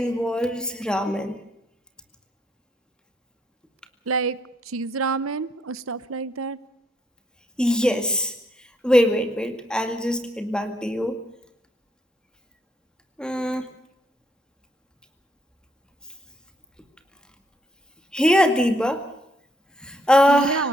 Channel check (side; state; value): both; normal; correlation 0.72